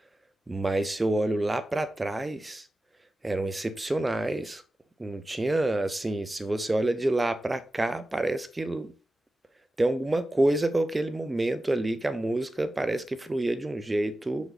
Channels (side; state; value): both; normal; correlation 0.94